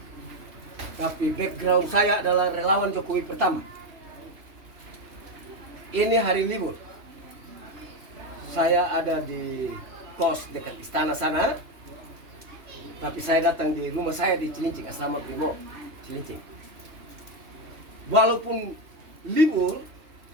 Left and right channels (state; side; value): late; left; 3.2 ms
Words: Tapi background saya adalah relawan Jokowi pertama. Ini hari libur. Saya ada di kos dekat istana sana. Tapi saya datang di rumah saya di Cilincing, asrama Brimob Cilincing. Walaupun libur,